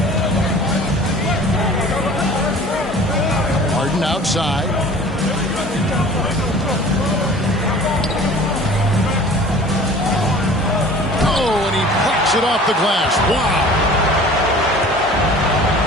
Harden outside. Oh, and he plucks it off the glass. Wow.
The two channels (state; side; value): normal; both; correlation 0.45